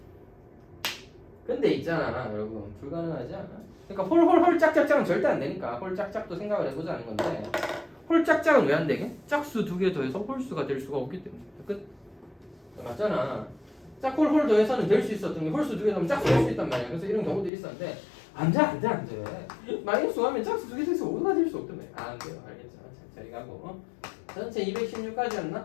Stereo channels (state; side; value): drops out; right; at 17.5 s